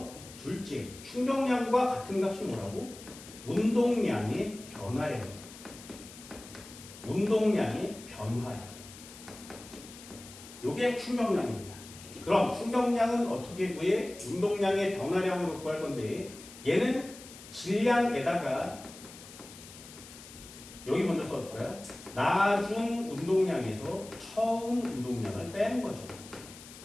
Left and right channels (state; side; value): noise; left; hiss, 17 dB below the sound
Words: 둘째, 충격량과 같은 값이 뭐라고? 운동량의 변화량. 운동량의 변화량. 이게 충격량입니다. 그럼 충격량은 어떻게 구해? 운동량의 변화량으로 구할 건데 얘는 질량에다가 여기 먼저 써줄까요? 나중 운동량에서 처음 운동량을 빼는 거죠.